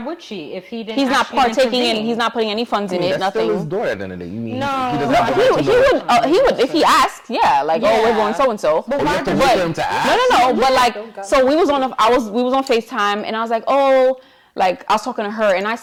she if he didn't? He's not actually partaking in. intervene? He's not putting any funds in it. That's Nothing. still his daughter at the end of the day. You mean No. he doesn't No, have the right to know? he would if he asked. Yeah, like, oh, we're Yeah. going so and so. But Oh, you why have to does wait he- for him to ask? No. But Don't like, go. so we was on FaceTime, and I was like, oh, like I was talking to her, and I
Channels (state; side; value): identical; both; correlation 1.00